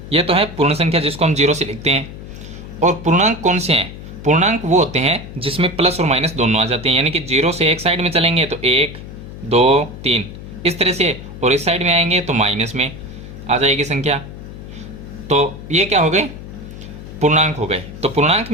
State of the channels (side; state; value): left; noise; hum, 13 dB below the sound